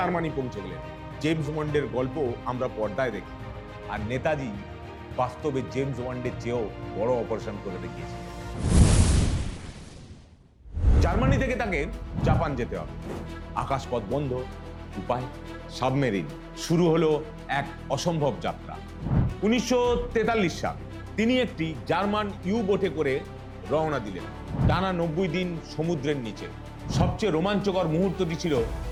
পৌঁছে গেলেন। জেমস বন্ডের গল্প আমরা পর্দায় দেখি, আর নেতাজি বাস্তবে জেমস বন্ডের চেয়েও বড় অপারেশন করে দেখিয়েছিলেন। জার্মানি থেকে তাকে জাপান যেতে হবে। আকাশপথ বন্ধ, উপায় সাবমেরিন। শুরু হলো এক অসম্ভব যাত্রা। 1943 সাল, তিনি একটি জার্মান ইউ বোটে করে রওনা দিলেন। টানা 90 দিন সমুদ্রের নিচে। সবচেয়ে রোমাঞ্চকর মুহূর্তটি ছিল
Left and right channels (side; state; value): both; identical; correlation 1.00